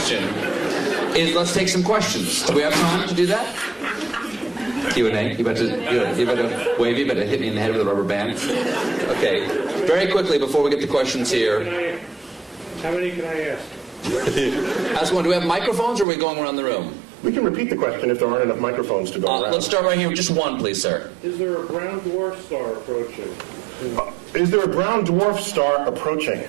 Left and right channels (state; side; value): drops out; left; at 16.1 s